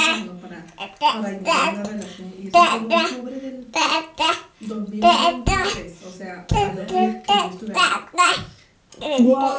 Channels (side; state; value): both; identical; correlation 1.00